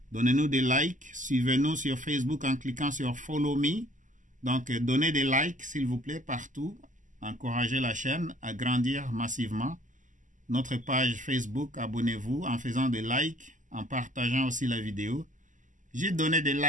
Donnez-nous des likes. Suivez-nous sur Facebook en cliquant sur Follow Me. Donc, donnez des likes, s'il vous plaît, partout. Encouragez la chaîne à grandir massivement. Notre page Facebook, abonnez-vous en faisant des likes, en partageant aussi la vidéo. J'ai donné des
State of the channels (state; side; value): late; left; 0.37 ms